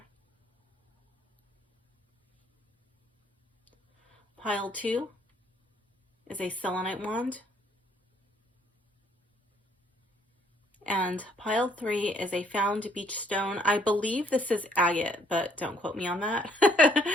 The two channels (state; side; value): normal; both; correlation 0.65